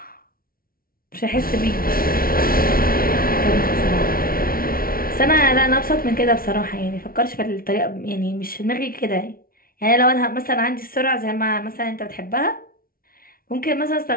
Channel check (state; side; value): late; right; 0.43 ms